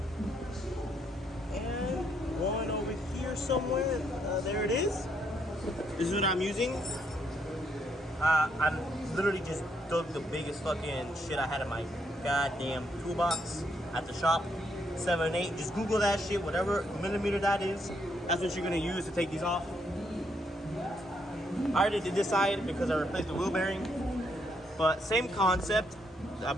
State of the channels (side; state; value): both; normal; correlation 0.74